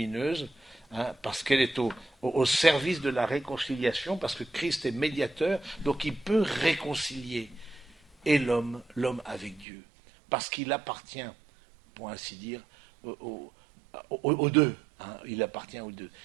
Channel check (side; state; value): left; drops out; at 9.7 s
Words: parce qu'elle est au service de la réconciliation, parce que Christ est médiateur, donc il peut réconcilier et l'homme avec Dieu, parce qu'il appartient, pour ainsi dire, aux deux. Il appartient aux deux.